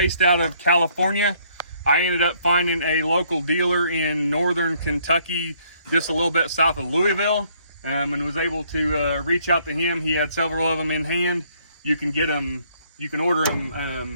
out of California. I ended up finding a local dealer in northern Kentucky, just a little bit south of Louisville, and was able to reach out to him. He had several of them in hand. You can get them, you can order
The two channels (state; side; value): inverted; both; correlation -0.66